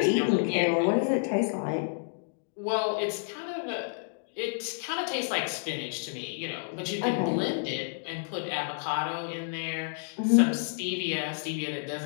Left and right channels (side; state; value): right; silent; digital silence